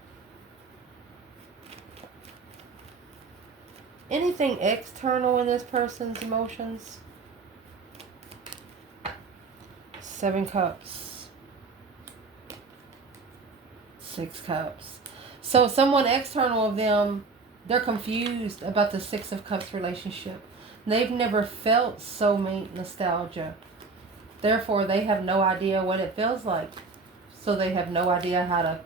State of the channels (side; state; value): left; quieter; 4.2 dB